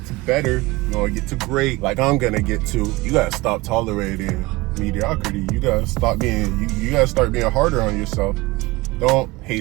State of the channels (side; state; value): left; quieter; 21.5 dB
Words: to better, you want to get to great, like I'm gonna get to, you gotta stop tolerating mediocrity. You gotta stop being, you gotta start being harder on yourself. Don't